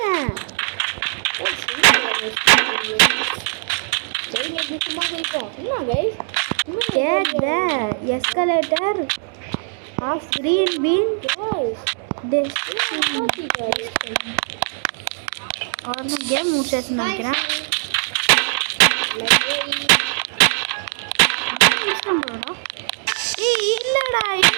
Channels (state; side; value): silent; left; 55 dB below the other